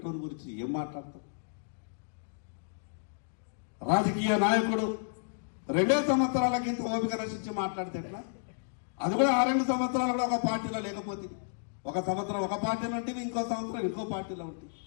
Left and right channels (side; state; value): right; silent; digital silence